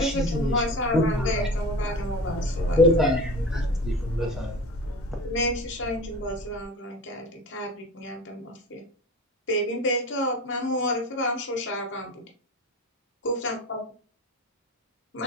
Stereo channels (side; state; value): both; normal; correlation 0.33